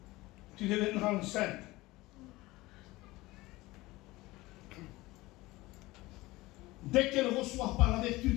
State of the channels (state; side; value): quieter; right; 19.9 dB